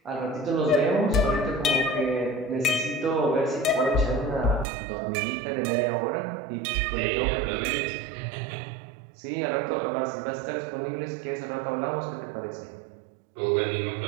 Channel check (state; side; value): drops out; left; at 4.7 s